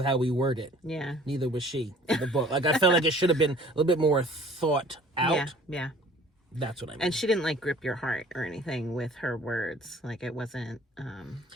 how we word it. Yeah. Neither was she in the book. Like, I felt like it should have been a little bit more thought out. Yeah. That's what I mean. And she didn't, like, grip your heart or anything with her words. Like, it wasn't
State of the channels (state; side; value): normal; both; correlation 0.52